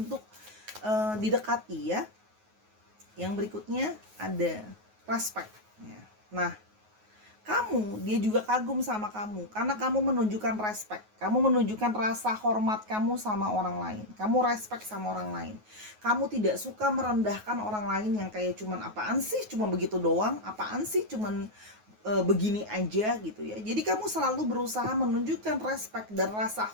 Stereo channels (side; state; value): left; late; 9.4 ms